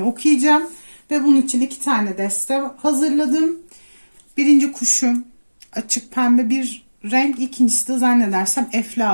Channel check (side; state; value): both; inverted; correlation -1.00